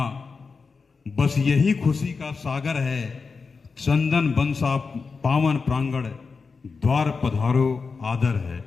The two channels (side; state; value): right; quieter; 4.8 dB